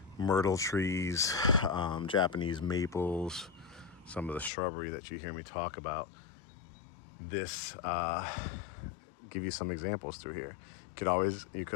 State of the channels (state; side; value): drops out; right; at 4.5 s